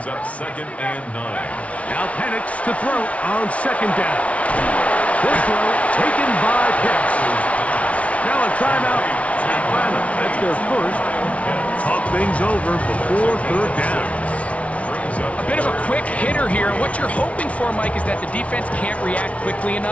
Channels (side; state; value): right; late; 0.065 ms